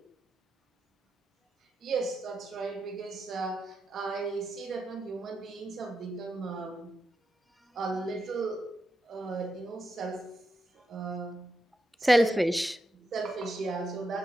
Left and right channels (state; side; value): normal; both; correlation 0.86